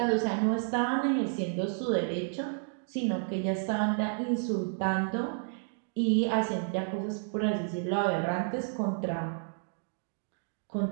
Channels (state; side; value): silent; left; digital silence